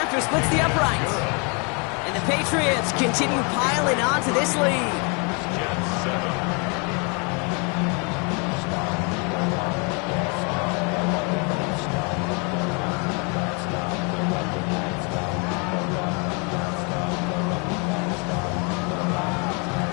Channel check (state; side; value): quieter; right; 33.7 dB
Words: splits the uprights. And the Patriots continue piling on to this lead.